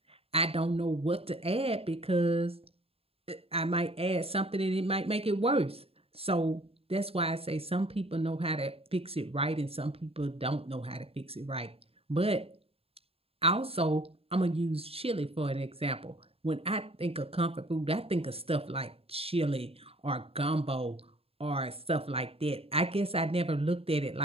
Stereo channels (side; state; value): left; late; 0.28 ms